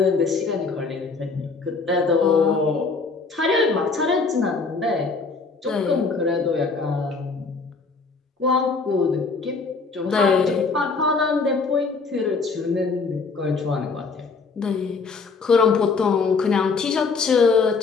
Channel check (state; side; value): quieter; right; 4.4 dB